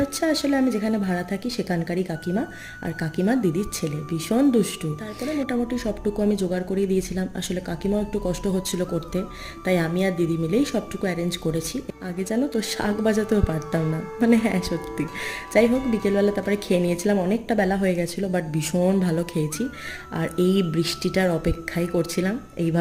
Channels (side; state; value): both; identical; correlation 1.00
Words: হচ্ছে আসলে আমি যেখানে ভাড়া থাকি সেখানকারই কাকিমা, আর কাকিমার দিদির ছেলে ভীষণ দুষ্টু। তারপরে মোটামুটি সবটুকু আমি জোগাড় করিয়ে দিয়েছিলাম। আসলে কাকিমাও একটু কষ্ট হচ্ছিল করতে, তাই আমি আর দিদি মিলেই সবটুকু অ্যারেঞ্জ করেছি। আগে জানো তো শাক বাজাতেও পারতাম না, মানে হ্যাঁ সত্যি। যাই হোক, বিকেলবেলা তারপরে খেয়ে নিয়েছিলাম, অনেকটা বেলা হয়ে গেছিলো, বাট ভীষণ ভালো খেয়েছি। আর এই বৃষ্টিটার অপেক্ষাই করছিলাম,